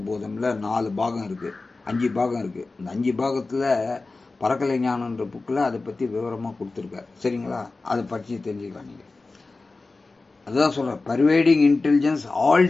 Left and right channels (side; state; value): right; quieter; 3.6 dB